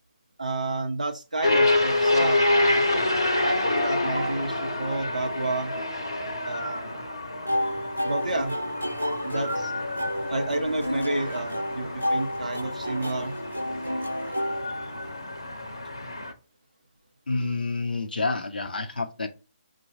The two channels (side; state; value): both; inverted; correlation -0.82